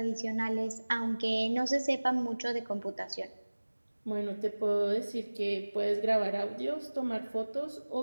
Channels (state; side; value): inverted; both; correlation -1.00